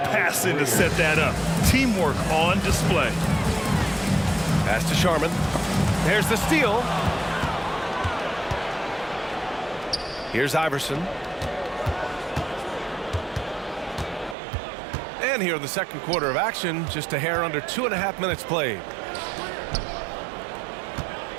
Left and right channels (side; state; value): left; drops out; at 14.4 s